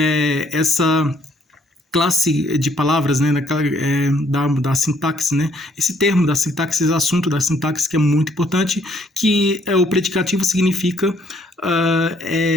essa classe de palavras, né, da sintaxe, né? Esse termo da sintaxe, esse assunto da sintaxe que é muito importante, que o predicativo significa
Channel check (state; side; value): normal; both; correlation 0.66